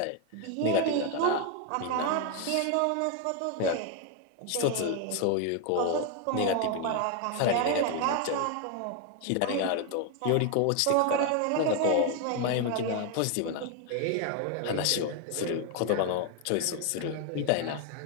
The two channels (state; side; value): different; both; correlation 0.01